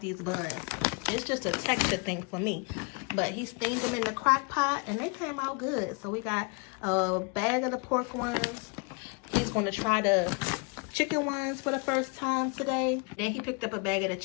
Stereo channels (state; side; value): quieter; right; 33.2 dB